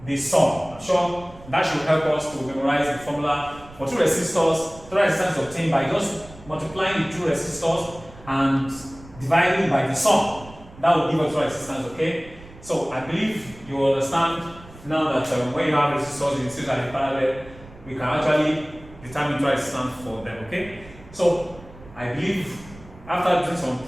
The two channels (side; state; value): right; noise; rumble, 20 dB below the sound